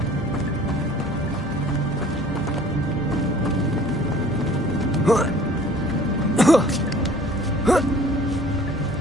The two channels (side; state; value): both; normal; correlation 0.50